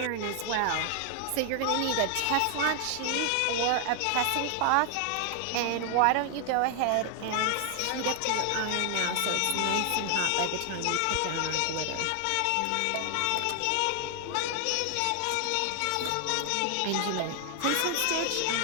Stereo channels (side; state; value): both; different; correlation 0.00